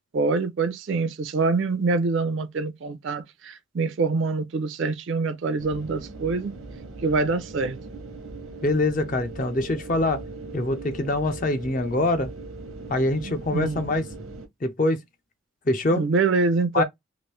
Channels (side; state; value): both; normal; correlation 0.31